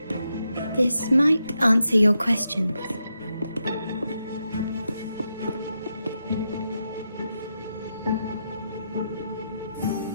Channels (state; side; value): inverted; both; correlation -0.85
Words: This might answer your questions.